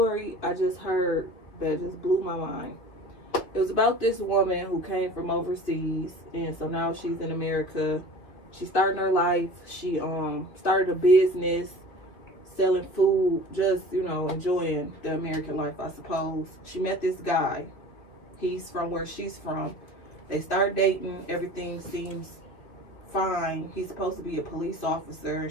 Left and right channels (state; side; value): late; right; 2.3 ms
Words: I just heard that just blew my mind. It was about this woman who came from overseas, and so now she's in America. She's starting her life. She started a business selling food, just, you know, enjoying the American life, I suppose. She met this guy. He's from where she's from. They start dating. Everything seems fine. He's supposed to be a police officer,